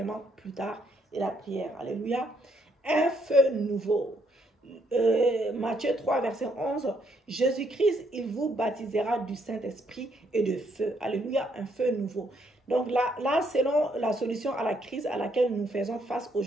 plus tard et la prière. Alléluia. Un feu nouveau. Matthieu 3, verset 11. Jésus-Christ, il vous baptisera du Saint-Esprit et de feu. Alléluia, un feu nouveau. Donc là, selon la solution à la crise à laquelle nous faisons face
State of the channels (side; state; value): both; normal; correlation 0.71